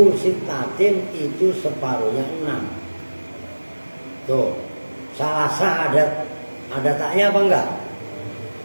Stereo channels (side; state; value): both; inverted; correlation -1.00